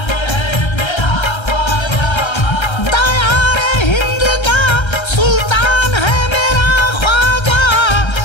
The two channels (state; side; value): late; right; 1.3 ms